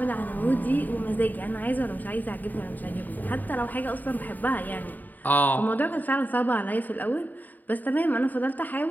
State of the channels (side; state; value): right; late; 0.085 ms